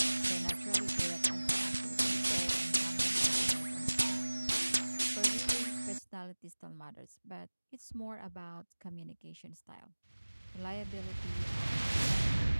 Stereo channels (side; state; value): both; inverted; correlation -1.00